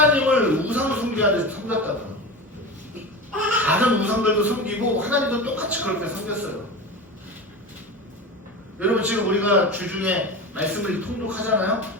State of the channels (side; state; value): both; normal; correlation 0.27